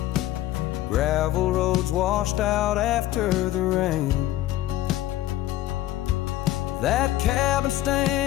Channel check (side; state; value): right; quieter; 14.6 dB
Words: gravel roads washed out after the rain. That cabin